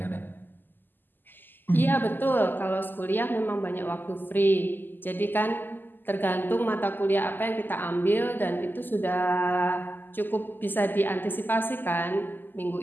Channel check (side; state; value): right; late; 0.091 ms